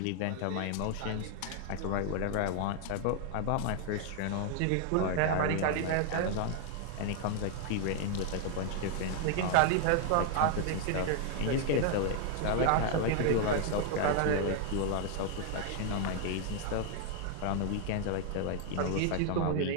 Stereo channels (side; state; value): both; different; correlation 0.00